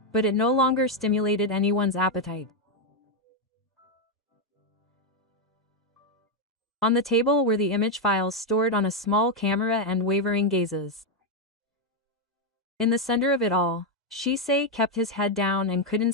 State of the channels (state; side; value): normal; both; correlation 0.03